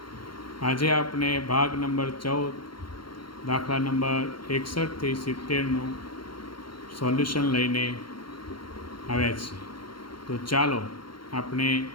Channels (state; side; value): late; right; 0.73 ms